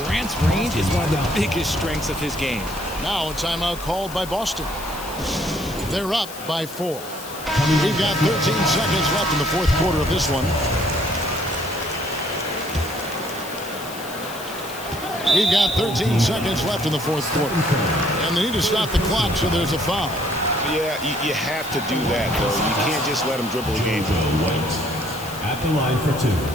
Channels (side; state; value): left; noise; hiss, 14 dB below the sound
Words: range is one of the biggest strengths of his game. Now a timeout called by Boston. They're up by 4. We've got 13 seconds left in the fourth quarter of this one. We've got 13 seconds left in the fourth quarter. And they need to stop the clock, so there's a foul. Yeah, you have to do that, though. You can't just let him dribble the game. White at the line for 2.